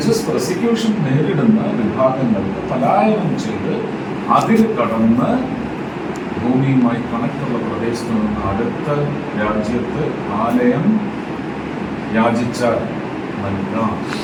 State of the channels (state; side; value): identical; both; correlation 1.00